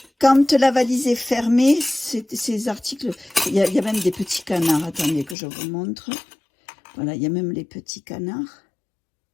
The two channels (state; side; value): drops out; right; at 5.4 s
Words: quand la valise est fermée, ces articles, il y a même des petits canards. Attendez que je vous montre. Voilà, il y a même les petits canards.